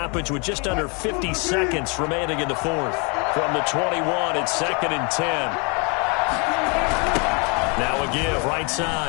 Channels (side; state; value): right; quieter; 32.9 dB